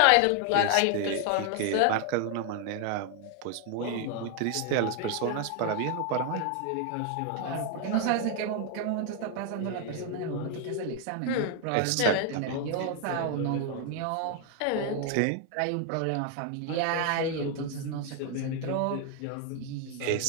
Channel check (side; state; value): both; different; correlation 0.00